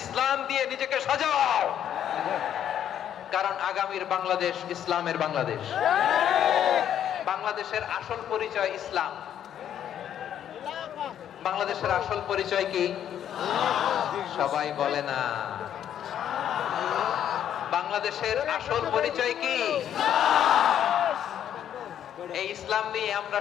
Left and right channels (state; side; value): quieter; right; 10.0 dB